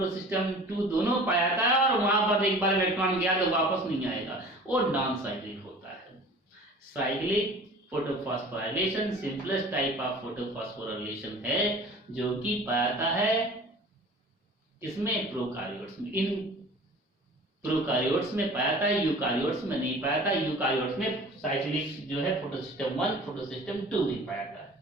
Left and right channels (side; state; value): both; normal; correlation 0.44